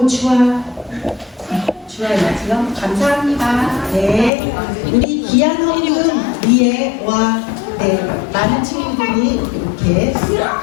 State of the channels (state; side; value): drops out; right; at 4.3 s